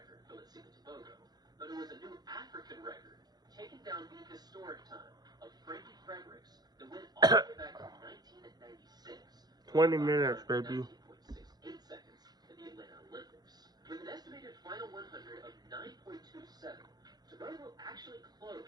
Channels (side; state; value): left; late; 0.19 ms